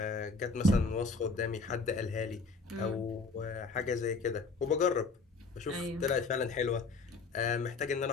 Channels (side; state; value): right; quieter; 4.1 dB